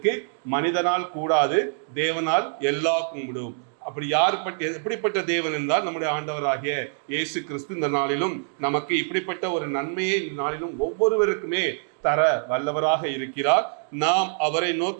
மனிதனால் கூடாது, தேவனால் எல்லா கூடும். அப்படி எப்படிப்பட்ட தேவன் என்றால் நம்முடைய ஆண்டவராகிய இயேசு கிறிஸ்து இந்த நாளிலும் நமக்கு இப்படிப்பட்ட ஒரு நன்மையை இந்த நாளிலும் ஒவ்வொருவருக்குமே தர வல்லவராக இருக்கிறார். நாம் அவரை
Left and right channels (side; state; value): left; silent; digital silence